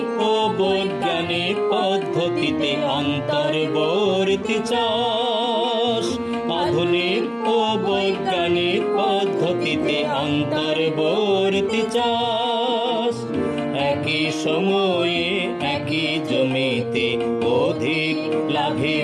ও বৈজ্ঞানিক পদ্ধতিতে অন্তর্বর্তী চাষ, আধুনিক ও বৈজ্ঞানিক পদ্ধতিতে অন্তর্বর্তী চাষ, একই সময়ে একই জমিতে অধিক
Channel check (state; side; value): identical; both; correlation 1.00